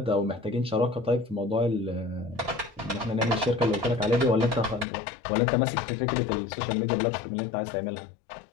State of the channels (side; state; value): right; drops out; at 4.9 s